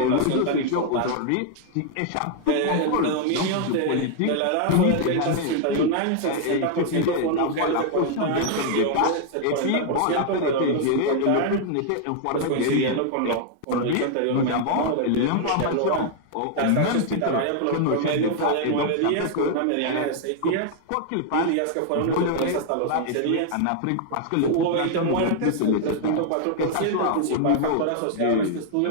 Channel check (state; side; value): different; both; correlation 0.00